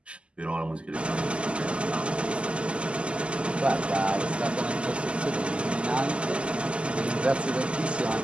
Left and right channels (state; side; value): late; left; 0.054 ms